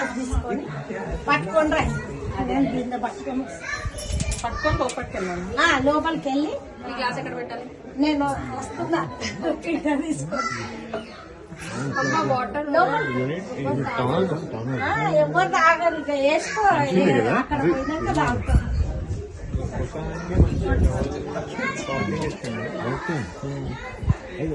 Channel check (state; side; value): identical; both; correlation 1.00